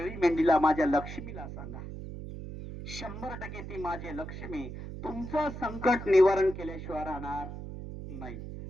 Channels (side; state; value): right; noise; hum, 9 dB below the sound